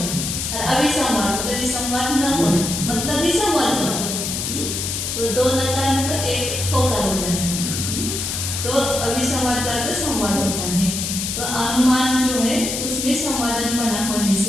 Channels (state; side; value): noise; left; hiss, 3 dB below the sound